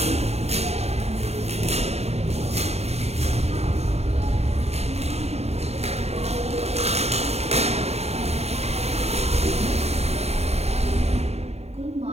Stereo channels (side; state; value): left; late; 0.31 ms